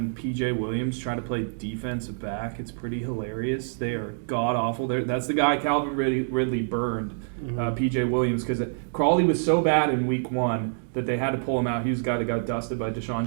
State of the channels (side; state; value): left; silent; digital silence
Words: PJ Williams try to play defensive back, it's pretty hilarious. They are god awful. That's the guy Calvin Ridley burned, PJ Williams, because Crawley was so bad in week 1 that they had to pull him out. He was the guy that got dusted by Deshaun